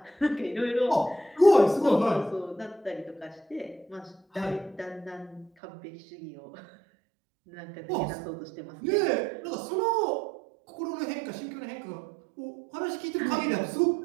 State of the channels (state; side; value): drops out; left; at 5.5 s